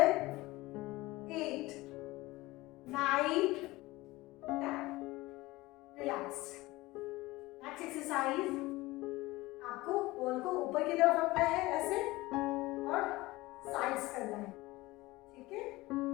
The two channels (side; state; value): right; quieter; 19.9 dB